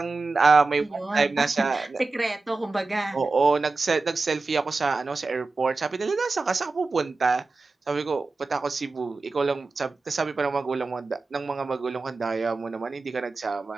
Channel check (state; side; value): quieter; left; 3.7 dB